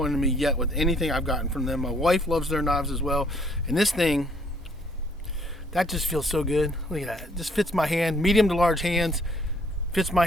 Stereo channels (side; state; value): both; normal; correlation 0.64